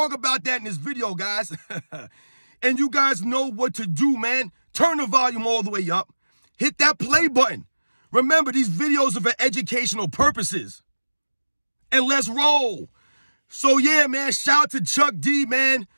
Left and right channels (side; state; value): both; inverted; correlation -1.00